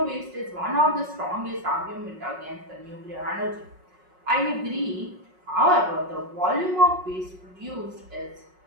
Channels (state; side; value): late; left; 5.4 ms